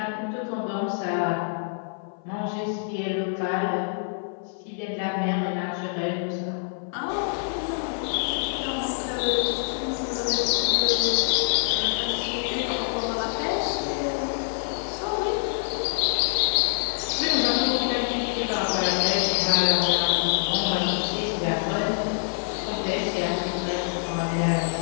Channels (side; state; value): right; silent; 57 dB below the other